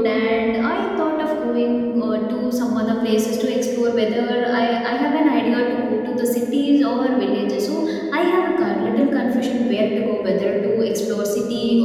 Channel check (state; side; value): identical; both; correlation 1.00